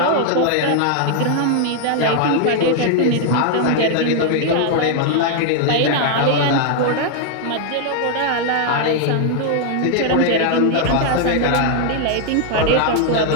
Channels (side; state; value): both; different; correlation 0.00